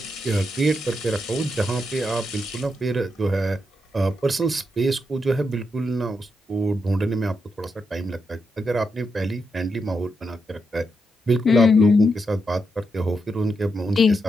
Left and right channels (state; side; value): normal; both; correlation 0.83